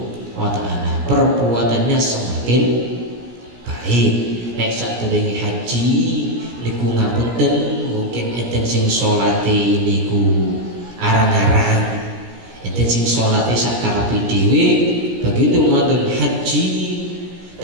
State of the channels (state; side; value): late; left; 17 ms